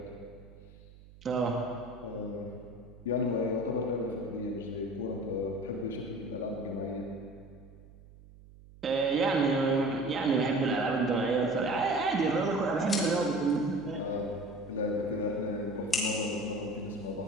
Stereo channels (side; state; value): right; noise; hum, 21 dB below the sound